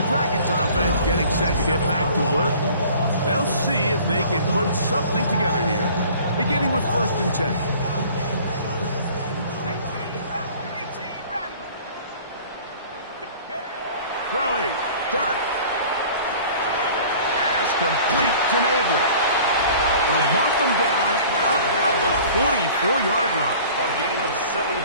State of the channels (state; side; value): inverted; both; correlation -0.47